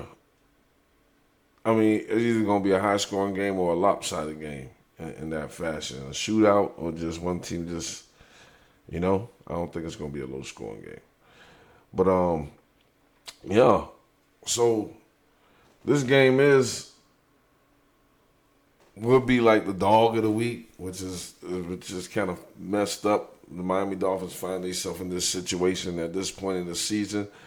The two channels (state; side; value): identical; both; correlation 1.00